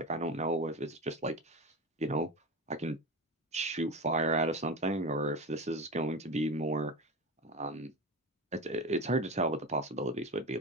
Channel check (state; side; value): normal; both; correlation 0.25